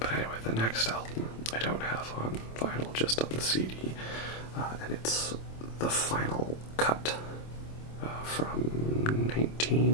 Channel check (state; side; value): late; right; 26 ms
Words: anyway, the next album I don't have on vinyl, just on the CD, and it's the final cut from